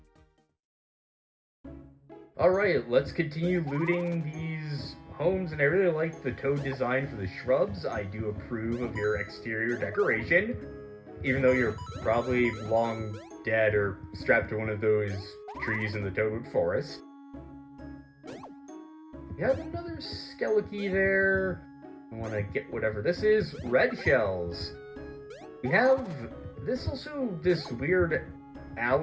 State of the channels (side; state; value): both; identical; correlation 1.00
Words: Alright, let's continue looting these homes, and I really like the toad design for the shrubs. I do approve of your exterior decoration, even though you're probably long dead or strapped to one of those trees in the Toadwood Forest. We have another Skeliki there. I want to get whatever this is. Red shells. We have this weird